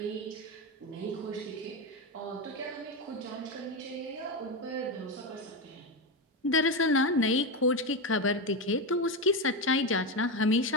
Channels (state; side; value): normal; both; correlation 0.13